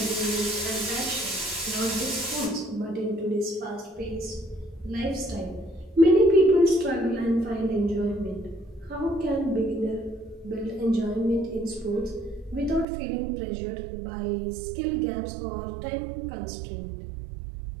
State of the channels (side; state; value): left; drops out; at 12.9 s